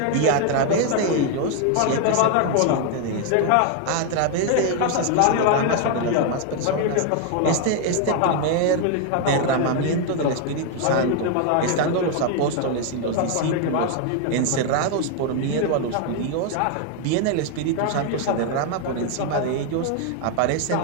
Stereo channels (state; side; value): different; both; correlation 0.01